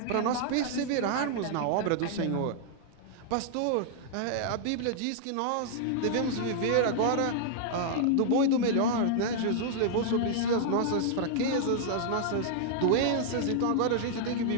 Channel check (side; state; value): both; different; correlation -0.01